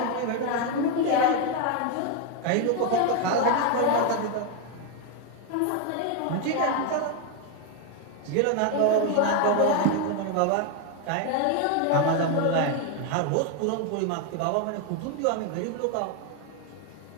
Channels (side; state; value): both; different; correlation 0.01